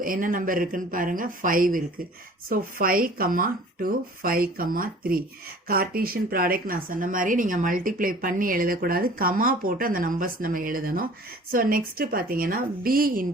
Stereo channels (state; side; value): normal; both; correlation 0.48